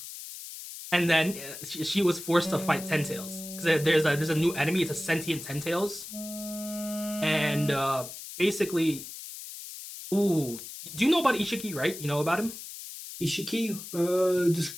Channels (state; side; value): noise; left; hiss, 11 dB below the sound